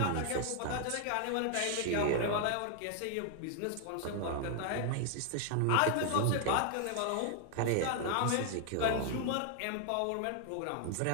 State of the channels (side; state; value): both; different; correlation 0.00